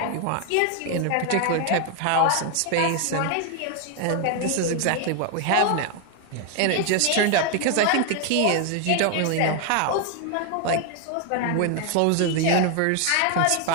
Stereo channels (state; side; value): different; both; correlation 0.00